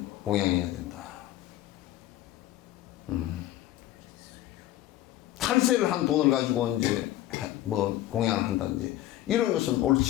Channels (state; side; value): quieter; right; 14.4 dB